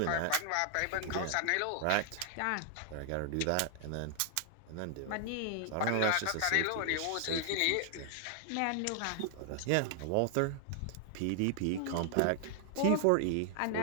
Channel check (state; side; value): different; both; correlation 0.00